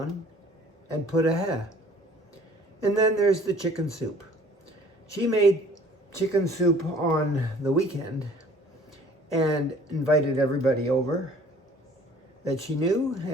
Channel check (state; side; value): normal; both; correlation 0.53